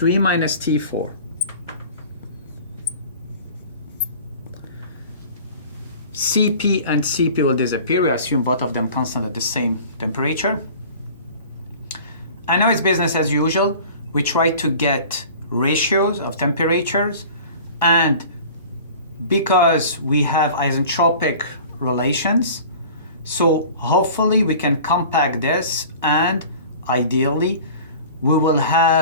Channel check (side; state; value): both; inverted; correlation -0.43